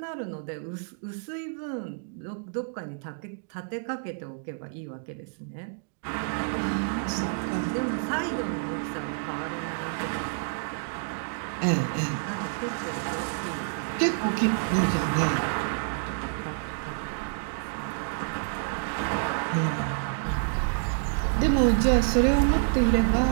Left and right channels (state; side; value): silent; left; digital silence